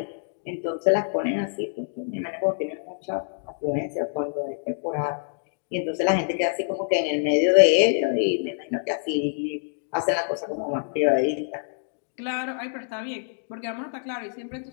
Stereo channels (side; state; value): right; silent; digital silence